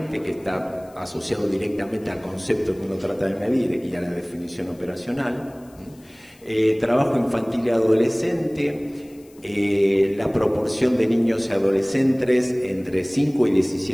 que está asociado directamente al concepto que uno trata de medir y a la definición operacional. Trabajo infantil y adolescente, la proporción de niños y adolescentes entre 5 y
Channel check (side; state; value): left; noise; hiss, 28 dB below the sound